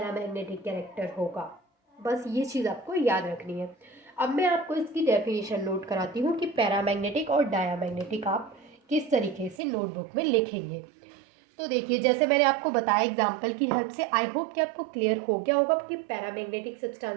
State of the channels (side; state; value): left; drops out; at 9.6 s